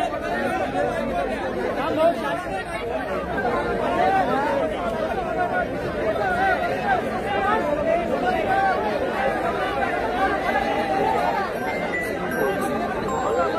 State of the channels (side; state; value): both; identical; correlation 1.00